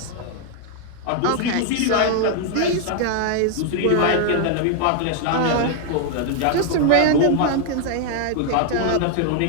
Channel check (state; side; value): different; both; correlation 0.00